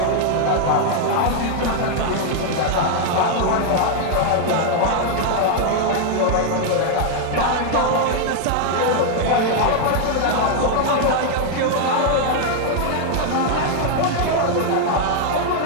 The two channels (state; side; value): different; both; correlation 0.00